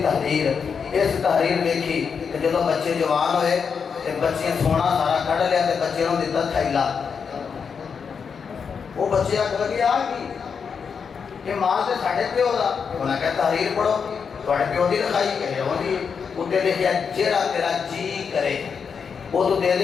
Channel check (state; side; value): quieter; right; 6.2 dB